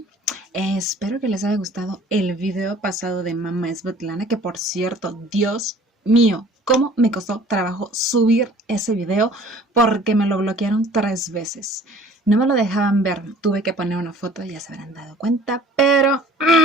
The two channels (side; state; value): both; normal; correlation 0.50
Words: Espero que les haya gustado el video pasado de Mamá Svetlana, que por cierto, Dios mío, cómo me costó trabajo subir ese video porque me lo bloquearon 3 veces. No me lo dejaban ver, tuve que poner una foto, ya se habrán dado cuenta, pero